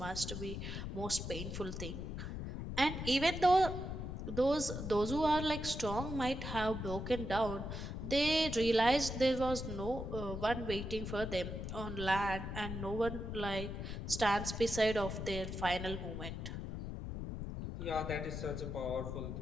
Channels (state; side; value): noise; left; rumble, 5 dB below the sound